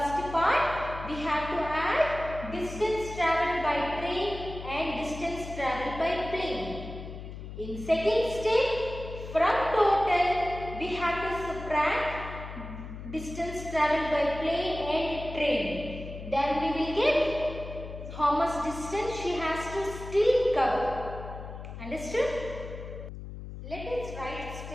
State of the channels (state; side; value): noise; left; hum, 10 dB below the sound